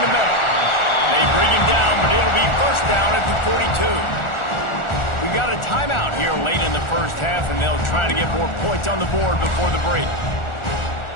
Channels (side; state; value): right; late; 1.4 ms